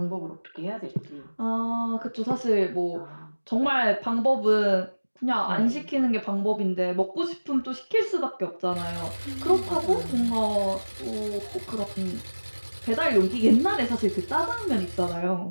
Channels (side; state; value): both; inverted; correlation -1.00